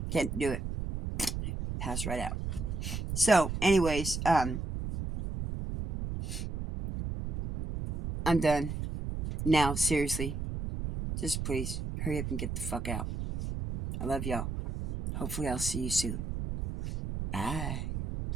Can't do it. Pass right out. So, anyways, I'm done. Now, seriously. Just please, hurry up and get the fuck out. I love y'all. Hopefully I'll see you soon. Bye.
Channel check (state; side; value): noise; right; rumble, 4 dB below the sound